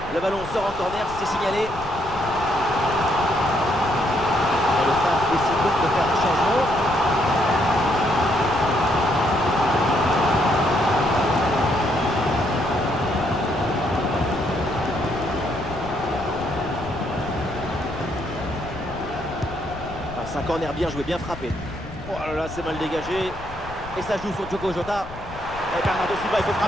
Le ballon sort en corner, c'est signalé. Et le staff décide donc de faire un changement. Ah, c'est un corner bien joué, bien frappé. Oh là là, c'est mal dégagé. Et ça joue sur Diogo Jota. Et Bernardo Silva, il faut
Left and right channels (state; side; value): noise; left; rumble, 16 dB below the sound